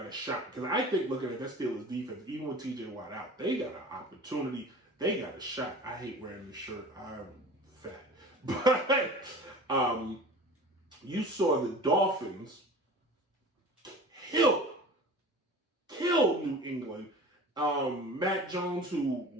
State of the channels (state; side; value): normal; both; correlation 0.39